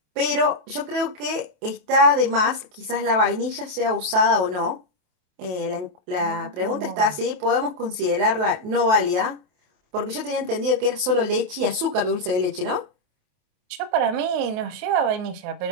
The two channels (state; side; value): late; left; 28 ms